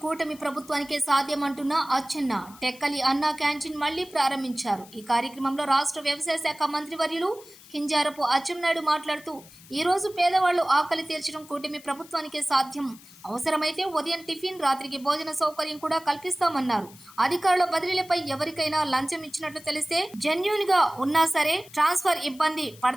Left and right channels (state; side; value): noise; left; hiss, 22 dB below the sound